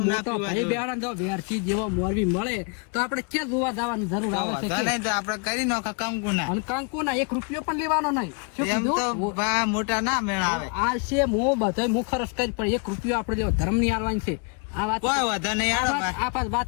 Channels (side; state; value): right; quieter; 35.1 dB